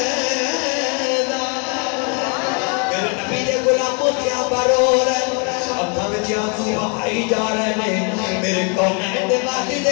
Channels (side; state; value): right; quieter; 35.0 dB